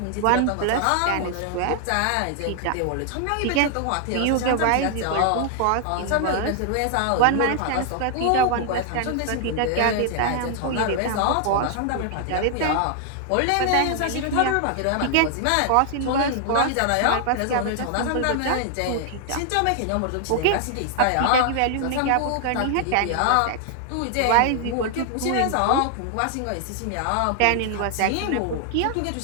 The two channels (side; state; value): both; different; correlation 0.00